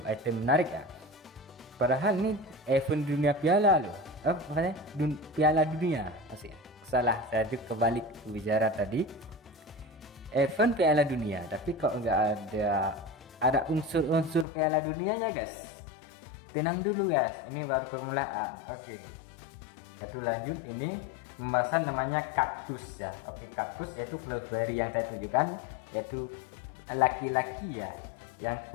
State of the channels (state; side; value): drops out; right; at 14.5 s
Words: menarik ya, padahal ini event dunia piala loh, makanya piala dunia masih ya. Salah, saya tuh kebalik bicara tadi, event piala dunia, tapi kok nggak ada unsur-unsur piala dunianya guys. Tenang dulu guys, ini baru permulaan. Oke, kita lanjut. Ini pembahasan namanya kaktus ya. Oke, kaktus yaitu Flowberry yang saya tunjukkan, yaitu laki-laki ya, yang